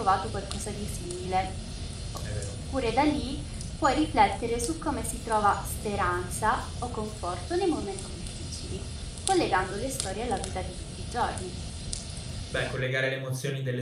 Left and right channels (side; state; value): both; identical; correlation 1.00